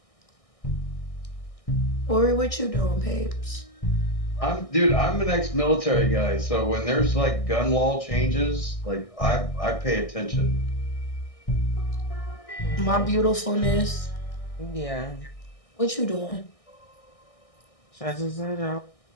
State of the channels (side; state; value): right; late; 1.6 ms